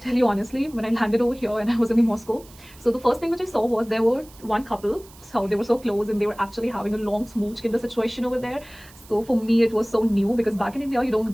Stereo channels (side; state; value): right; noise; hiss, 23 dB below the sound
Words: you honestly, when I landed over here and I was in the Moscow, so the first thing which I saw was there were one couple. So they were so close and they were actually having a long smooch in the situation over there. So for me, it was so new because back in India, you don't